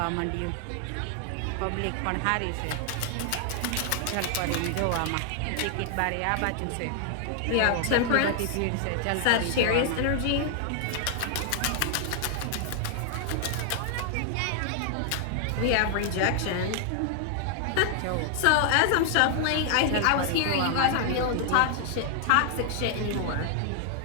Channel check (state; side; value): different; both; correlation 0.00